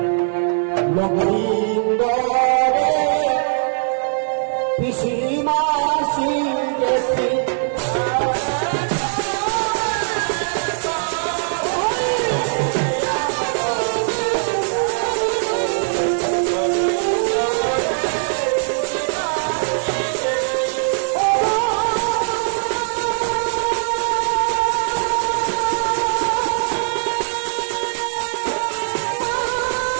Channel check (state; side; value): silent; left; digital silence